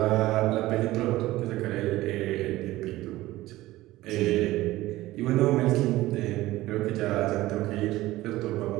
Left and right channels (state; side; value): quieter; left; 17.2 dB